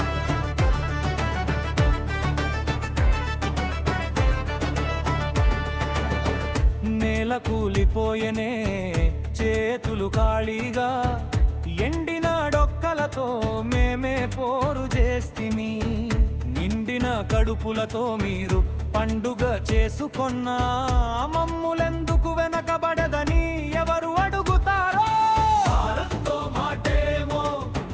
నేల కూలిపోయనే చేతులు ఖాళీగా, ఎండిన డొక్కలతో మేమే పోరు చేస్తిమి. నిండిన కడుపులతో మీరు పండుగ చేసుకొన్నా మమ్ములెందుకు వెనకబడదని ఎవరు అడుగుతారో? భారత్తో మాటేమో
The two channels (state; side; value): identical; both; correlation 1.00